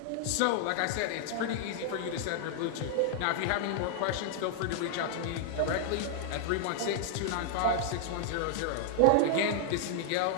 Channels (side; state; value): both; different; correlation -0.01